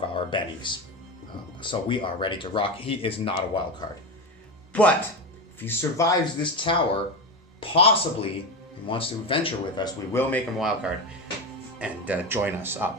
our bennies. So we are ready to rock. He is not a wild card. But if he survives this tower, possibly and wants to adventure with us, we will make him a wild card and join us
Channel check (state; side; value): normal; both; correlation 0.18